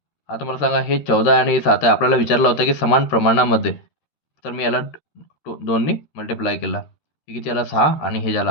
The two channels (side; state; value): right; late; 13 ms